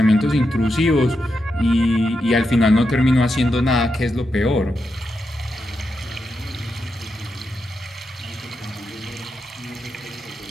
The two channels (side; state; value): both; normal; correlation 0.86